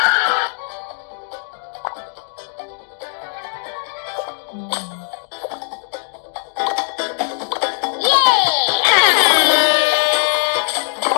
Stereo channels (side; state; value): right; silent; digital silence